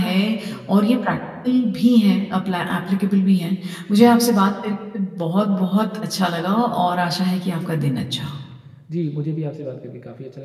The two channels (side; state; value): both; identical; correlation 1.00